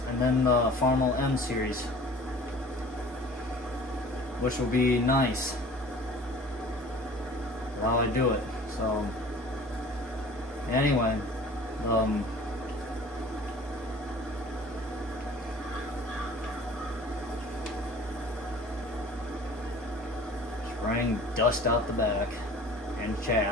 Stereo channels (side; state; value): both; normal; correlation 0.45